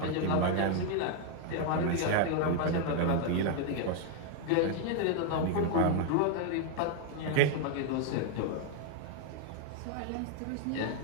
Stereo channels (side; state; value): both; different; correlation 0.01